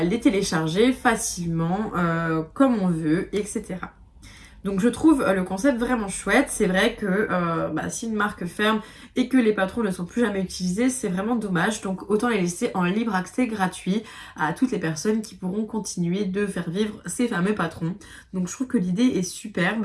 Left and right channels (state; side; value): identical; both; correlation 1.00